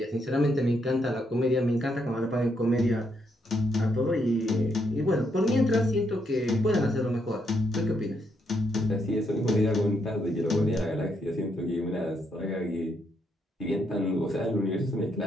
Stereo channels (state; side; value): normal; both; correlation 0.76